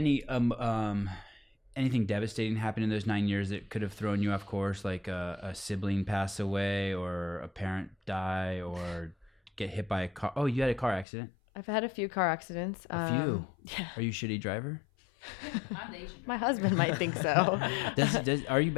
anything devastating happen in those 9 years that could have thrown you off course, like a sibling pass away or a parent die or get hit by a car? Oh, you had a car accident? I've had a few car accidents. A few? Yeah. Are you a shitty driver? I'm the Asian. My husband might think so. Are you a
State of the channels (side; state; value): right; drops out; at 11.1 s